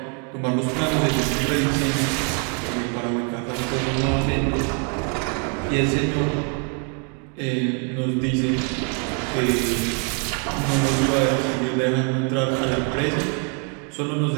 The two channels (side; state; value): left; quieter; 39.6 dB